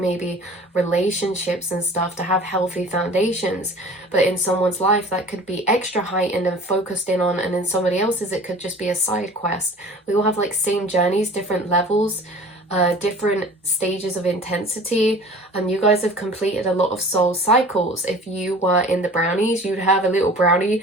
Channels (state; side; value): normal; both; correlation 0.44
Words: relationships and stuff, to have healthy foundations. But in someone's life that could be extra heightened and focused in on, and in somebody else's it could just be a side quest. We all have like same journeys, different levels, different stages of intensity, and you guys have completed a lot of soul cycles. If you were in the brownies, you'd have a little brownie